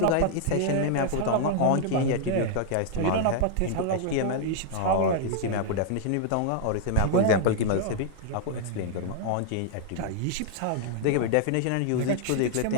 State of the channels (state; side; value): different; both; correlation 0.00